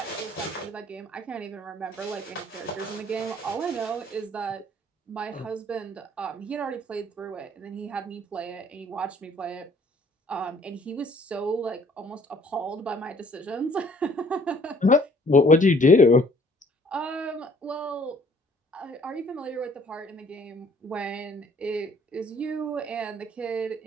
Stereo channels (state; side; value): normal; both; correlation 0.58